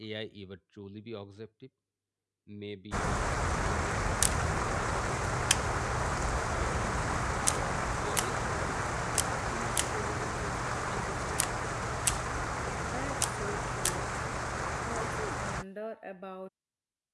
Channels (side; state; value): both; identical; correlation 1.00